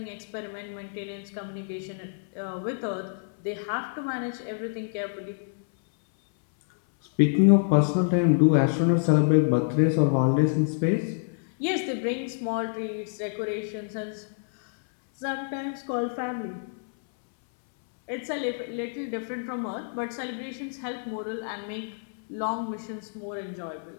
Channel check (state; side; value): silent; right; 60 dB below the other